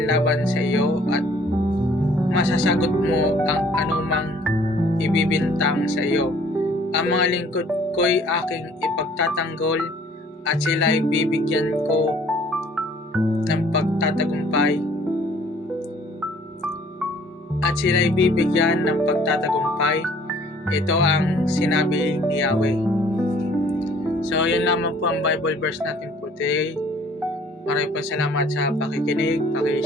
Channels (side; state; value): both; normal; correlation 0.56